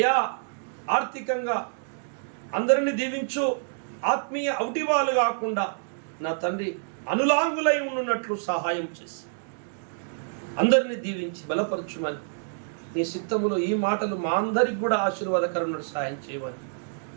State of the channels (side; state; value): left; silent; digital silence